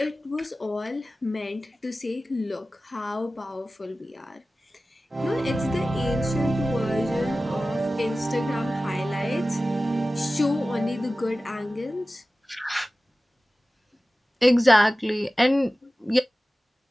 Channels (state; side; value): normal; both; correlation 0.96